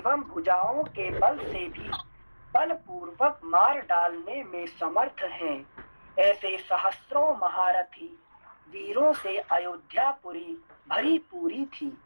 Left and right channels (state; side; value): inverted; both; correlation -1.00